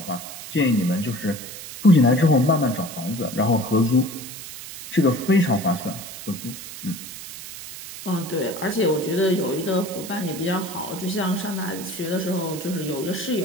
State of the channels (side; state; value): right; noise; hiss, 11 dB below the sound